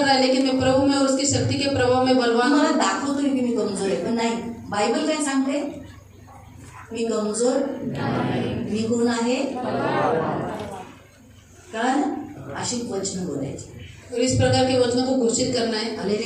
है, लेकिन मैं प्रभु में और उसकी शक्ति के प्रभाव में बलवान मला हूँ। दाखवतोय की मी कमजोर आहे, पण नाही. बायबल काय सांगते? मी कमजोर, मी कोण आहे? कारण अशी वचन बोलायची. और इस प्रकार के वचनों को घोषित करना है।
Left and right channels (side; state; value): both; identical; correlation 1.00